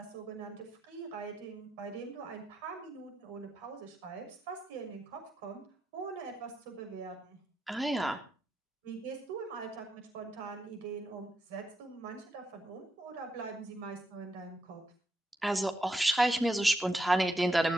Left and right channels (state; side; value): normal; both; correlation 0.83